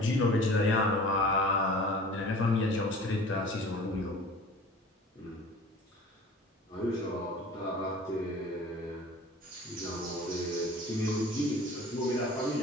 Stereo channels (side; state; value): both; normal; correlation 0.43